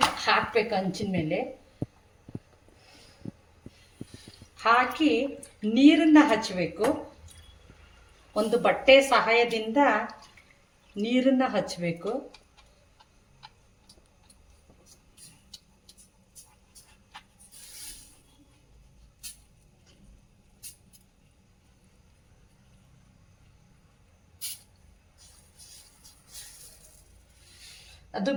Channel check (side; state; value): both; identical; correlation 1.00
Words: ಹಾಕ್ಬೇಕು. ಹಂಚಿನ ಮೇಲೆ ಹಾಕಿ ನೀರನ್ನು ಹಚ್ಚಬೇಕು. ಒಂದು ಬಟ್ಟೆ ಸಹಾಯದಿಂದ ನೀರನ್ನು ಹಚ್ಚಬೇಕು. ಅದು